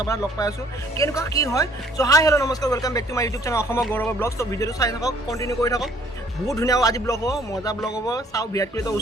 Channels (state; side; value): normal; both; correlation 0.59